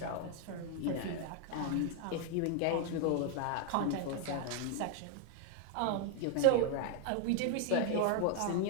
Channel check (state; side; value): different; both; correlation 0.00